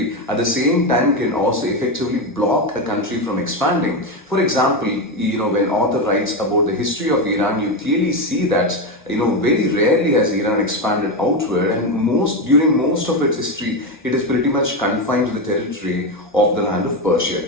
at the same time can also effectively block a country from expanding. For example, when author writes about the history of Iran, you clearly see that very rarely has Iran expanded outward, and during most of its history, it is pretty much confined to the territory of the land of Persia.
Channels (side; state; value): both; normal; correlation 0.12